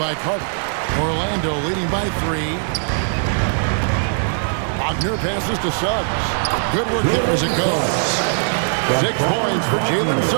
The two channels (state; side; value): silent; left; 66 dB below the other